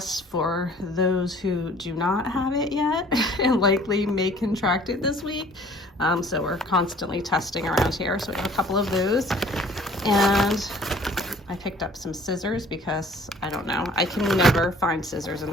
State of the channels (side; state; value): both; normal; correlation 0.53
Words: for those who do not have it yet and likely may contract it this week. So we're constantly testing around here. So we have a couple of those. And I picked up some scissors because I don't know, I can never find scissors in